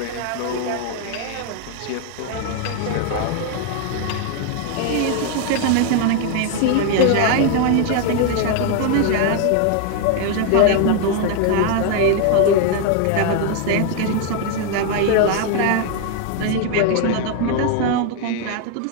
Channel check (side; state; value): both; different; correlation 0.00